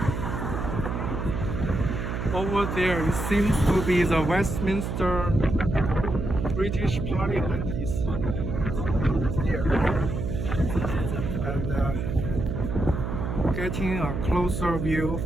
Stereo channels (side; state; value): right; noise; hum, 3 dB below the sound